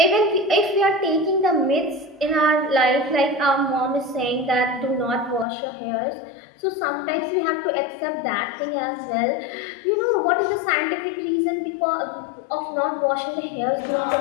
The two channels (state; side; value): drops out; right; at 5.5 s